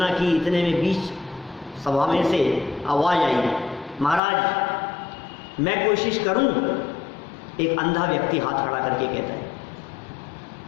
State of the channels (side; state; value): right; drops out; at 4.2 s